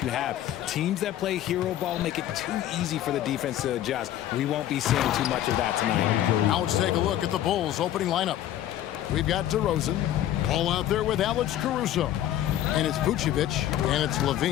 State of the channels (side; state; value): right; quieter; 12.3 dB